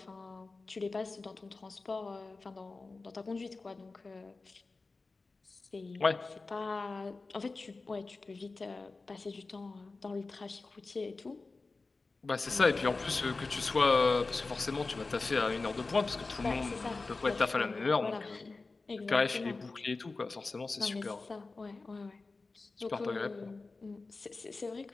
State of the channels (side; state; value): right; quieter; 3.7 dB